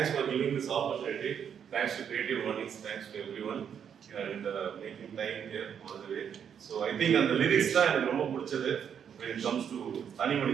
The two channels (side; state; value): left; quieter; 8.1 dB